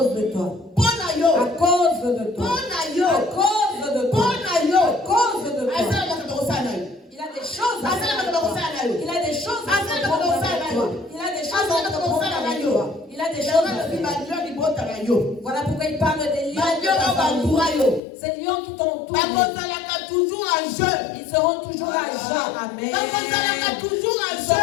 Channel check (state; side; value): drops out; right; at 18.0 s